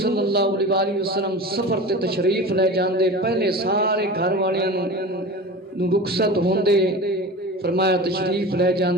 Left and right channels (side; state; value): both; normal; correlation 0.32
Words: صلی اللہ علیہ وآلہ وسلم سفر تے تشریف لے جاندے، پہلے سارے گھر والیاں نو رخصت ہوندے، فرمایا تشریف لے